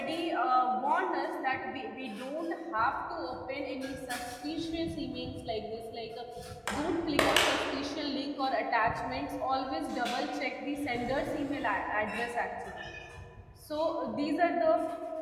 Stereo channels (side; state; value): both; identical; correlation 1.00